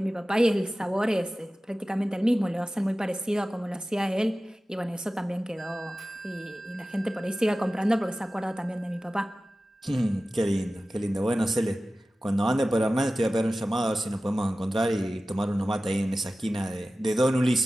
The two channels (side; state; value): both; normal; correlation 0.96